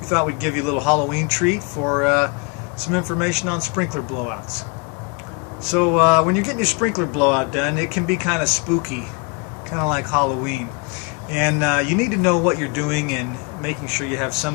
thought we'd give you a little Halloween treat for some information on sprinkler blowouts. So when you're getting your sprinkler blowout done, it can be kind of spooky, kind of like Halloween, and you need to know what you're doing and making sure you have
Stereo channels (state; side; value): quieter; right; 31.6 dB